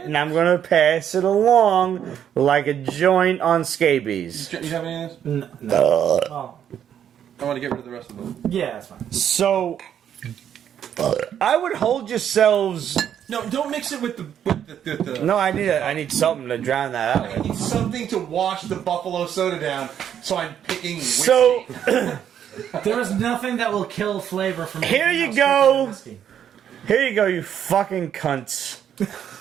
and I'm gonna pass it along like a joint on scabies. You have any of this? No. Oh. I want to get rid of the rest of them. Yeah, that's fine. So, I would hold yourselves. No, don't mix it with the No, I need something to drown that out I with. need something to wash the buffalo soda down, so I'm picking whiskey. So, There is nothing that will kill flavor from Here anything you else go. than whiskey. here you go, you fucking cunts.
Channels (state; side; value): quieter; left; 9.4 dB